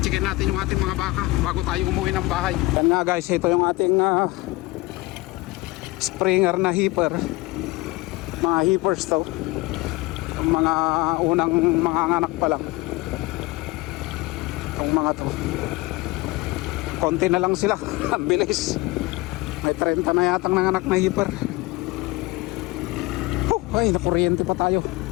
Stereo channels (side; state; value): right; quieter; 21.4 dB